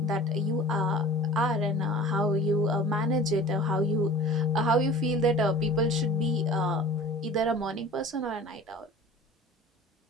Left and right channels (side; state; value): both; normal; correlation 0.42